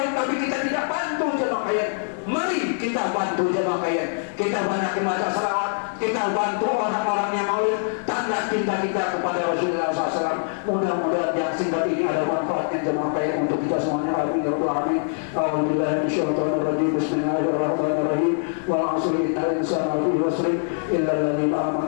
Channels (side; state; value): right; silent; digital silence